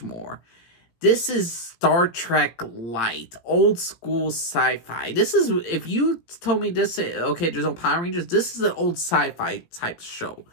more. This is Star Trek Light, old school sci-fi. This is, if you told me this, okay, there's no Power Rangers, this is an old sci-fi type show.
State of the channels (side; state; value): right; late; 18 ms